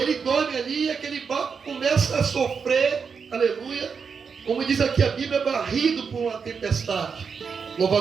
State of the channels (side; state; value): left; quieter; 5.9 dB